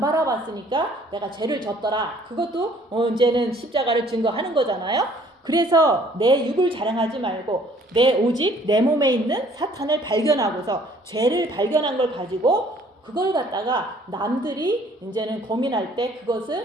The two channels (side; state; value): both; normal; correlation 0.58